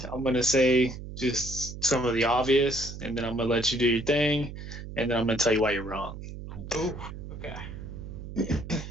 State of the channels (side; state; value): right; noise; hum, 10 dB below the sound